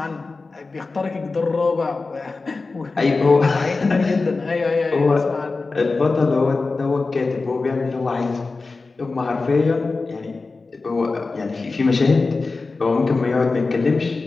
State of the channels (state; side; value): quieter; right; 3.8 dB